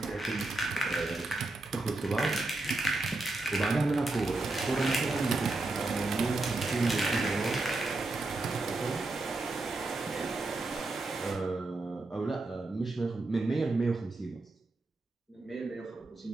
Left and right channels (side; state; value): left; quieter; 3.0 dB